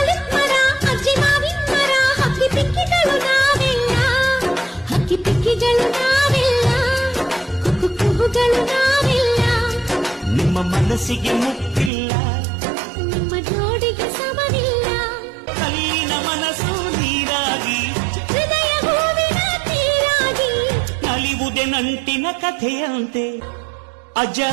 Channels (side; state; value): left; drops out; at 11.9 s